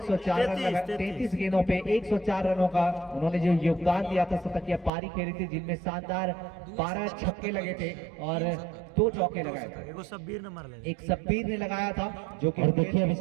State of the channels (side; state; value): left; drops out; at 4.9 s